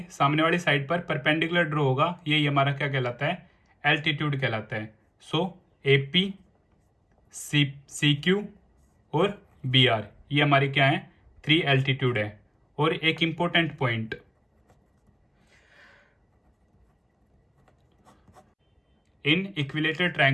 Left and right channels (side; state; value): both; identical; correlation 1.00